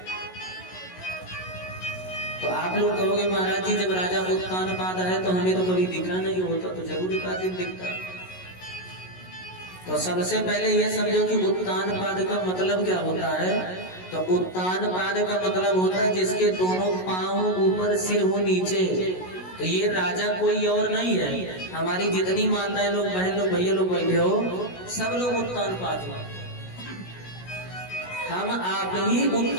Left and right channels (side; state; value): right; late; 16 ms